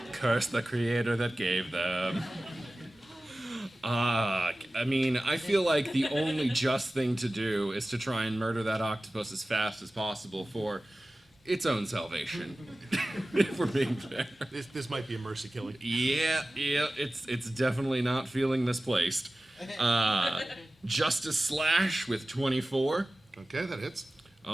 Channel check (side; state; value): both; normal; correlation 0.96